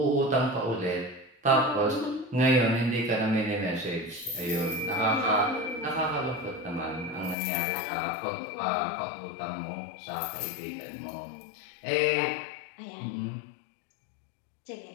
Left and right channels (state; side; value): drops out; right; at 7.4 s